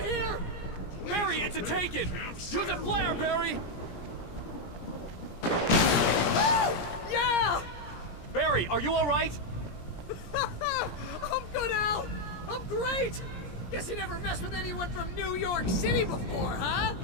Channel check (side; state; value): right; late; 17 ms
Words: here! Barry, it's a taken! Use a flare, Barry! Oh, yeah! Barry, are you alright? I'm good, Al. I'm great. Guess you never messed with anyone from New York City before, huh?